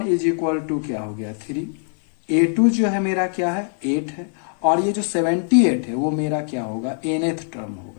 is equal to क्या हो गया 3, a2 जो है मेरा क्या है 8 है, और ये जो 78 है वो मेरा क्या होगा nth टर्म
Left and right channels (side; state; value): right; silent; 59 dB below the other